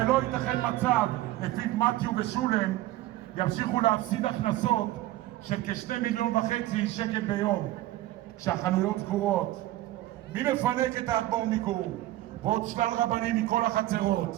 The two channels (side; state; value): left; quieter; 16.0 dB